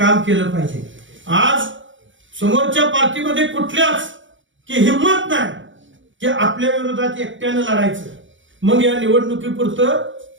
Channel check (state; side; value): late; left; 0.56 ms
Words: केलं पाहिजे. आज समोरच्या पार्टीमध्ये कुठल्याच की हिंमत नाही की आपल्या विरोधात एकट्यानं लढायचं. मग या निवडणुकीपुरतं